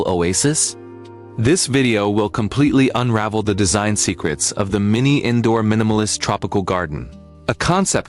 oasis? This video will completely unravel the design secrets of the mini indoor minimalist tropical garden. A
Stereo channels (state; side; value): identical; both; correlation 1.00